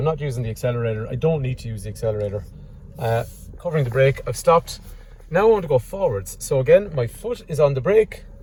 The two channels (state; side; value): identical; both; correlation 1.00